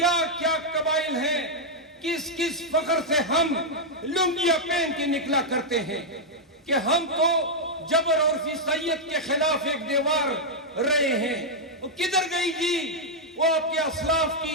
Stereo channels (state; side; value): normal; both; correlation -0.04